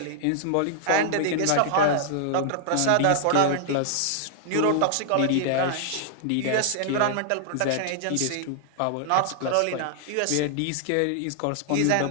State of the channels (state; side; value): different; both; correlation -0.01